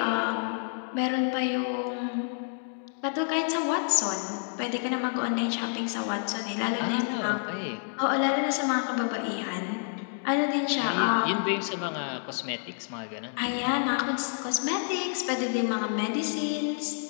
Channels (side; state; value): right; silent; 59 dB below the other